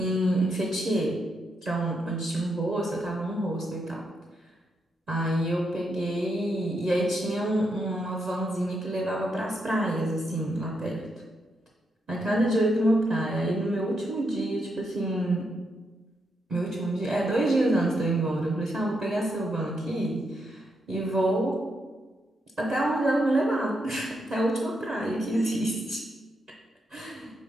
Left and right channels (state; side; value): normal; both; correlation 0.81